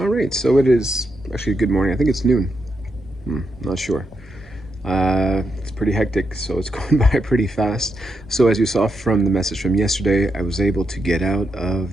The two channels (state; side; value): normal; both; correlation 0.83